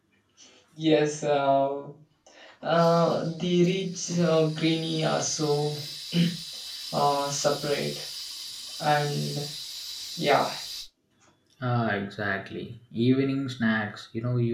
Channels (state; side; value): identical; both; correlation 1.00